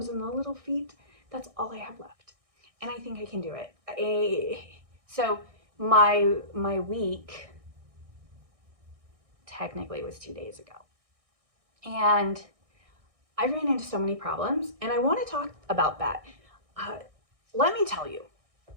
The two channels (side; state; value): left; late; 1.6 ms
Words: and the little feet, that's all I have left. And I think I can do it. So my week technically was 2 days ago. And I ran into so many problems, and I want to talk about that. Let me tell you,